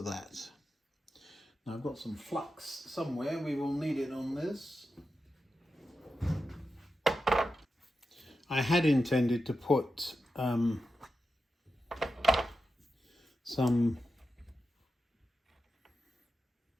that. Now I've got some flux somewhere. We will need it on this. I had intended to put some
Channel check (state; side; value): normal; both; correlation 0.90